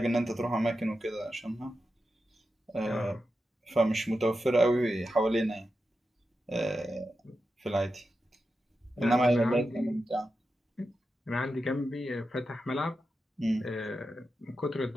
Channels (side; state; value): both; normal; correlation 0.89